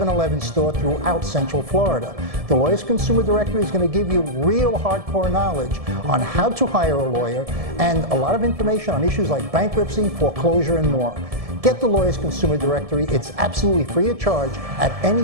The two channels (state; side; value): late; left; 1.7 ms